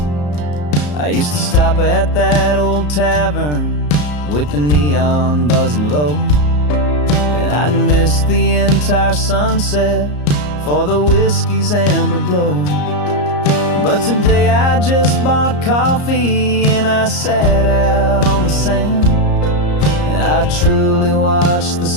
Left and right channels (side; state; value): right; late; 34 ms